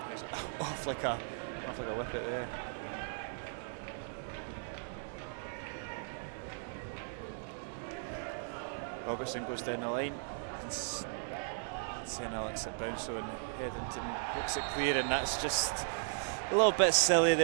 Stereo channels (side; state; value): left; silent; digital silence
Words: off like a wicket there. Robertson goes down the line. St Alex at bounce on Headington, looks it clear, and that's just a little bit silly